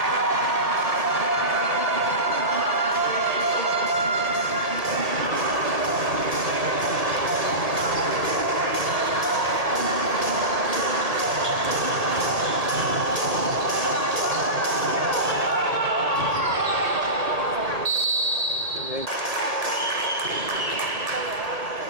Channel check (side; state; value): left; late; 1.7 ms